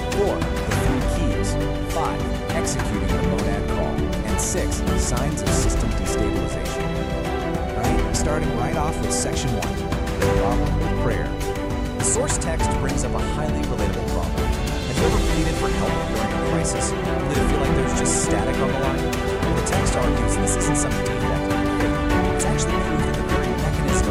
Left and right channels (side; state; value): both; identical; correlation 1.00